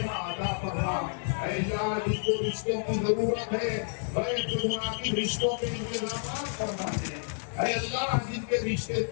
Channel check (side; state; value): right; silent; digital silence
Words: عطا فرما. اے اللہ جس کو رشتوں کی ضرورت ہے غیر سے مناسب رشتوں کے انتظامات فرما دے. اے اللہ جن کے رشتے